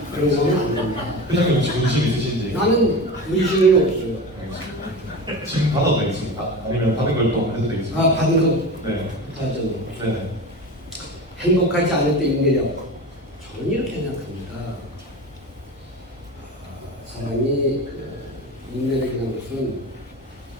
그런 거는 안 됩니다. 회장님 혹시 문신 있으신지? 나는 문신은 없어요. 알겠습니다. 지금 받아도 되겠습니까? 아니면 받은 걸 또 해도 되겠습니까? 아, 받은 거 네. 하죠. 네네. 행복하지 않을 때 인내력. 저는 이렇게 생각합니다. 사람이 인내력이라는 것은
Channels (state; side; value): normal; both; correlation 0.29